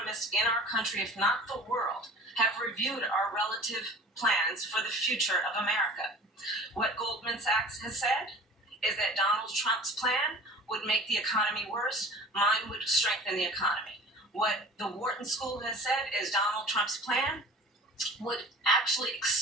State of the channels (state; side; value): normal; both; correlation 0.43